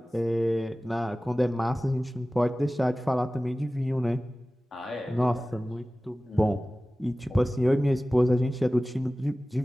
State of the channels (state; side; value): normal; both; correlation 0.97